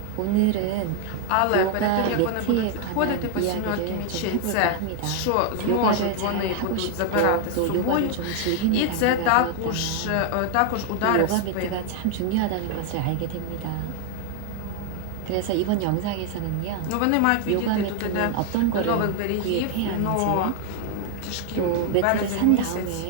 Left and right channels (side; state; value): both; different; correlation 0.00